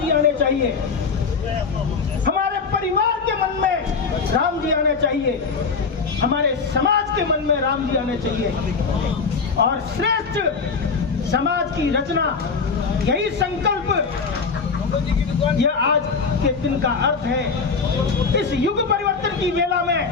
आने चाहिए, हमारे परिवार के मन में राम जी आने चाहिए, हमारे समाज के मन में राम जी आने चाहिए और श्रेष्ठ समाज की रचना, यही संकल्प, यह आज के दिन का अर्थ है। इस युग परिवर्तन की वेला में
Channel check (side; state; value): right; quieter; 5.0 dB